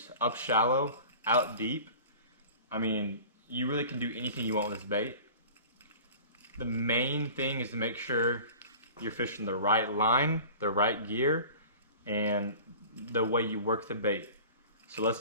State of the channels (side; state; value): both; inverted; correlation -0.41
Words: up shallow, out deep. I mean, you really can do anything you want with this bait. The main thing is to make sure you're fishing the right line, the right gear, and the way you work the bait. So